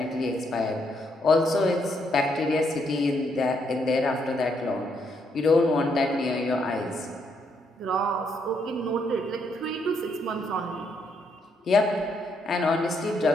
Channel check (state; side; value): normal; both; correlation 0.75